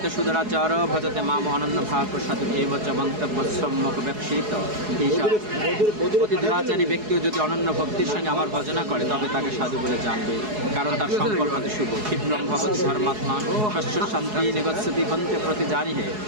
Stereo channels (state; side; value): late; left; 4.7 ms